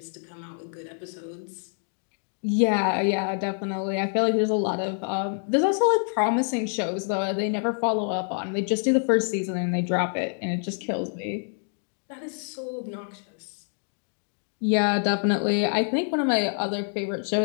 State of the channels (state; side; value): silent; right; 58 dB below the other